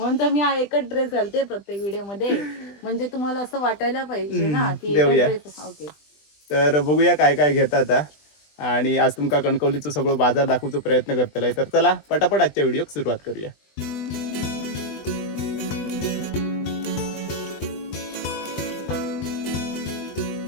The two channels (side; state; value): right; late; 20 ms